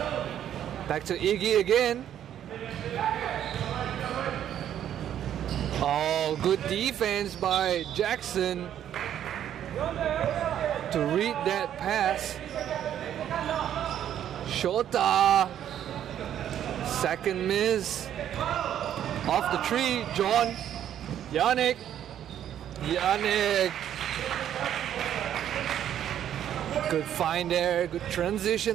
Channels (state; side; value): quieter; left; 10.4 dB